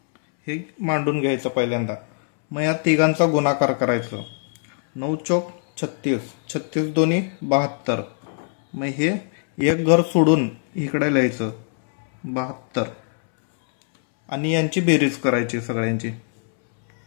हे मांडून घ्यायचं पहिल्यांदा। मग या तिघांचा गुणाकार करायचं। 9 चौक 36, 36 दोन्ही 72। मग हे एक घर सोडून इकडे लिहायचं 72 आणि यांची बेरीज करायची सगळ्यांची।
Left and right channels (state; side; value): silent; right; 64 dB below the other